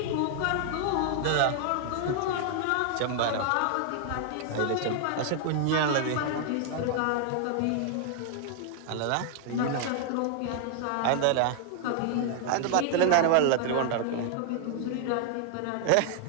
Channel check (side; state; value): both; different; correlation 0.00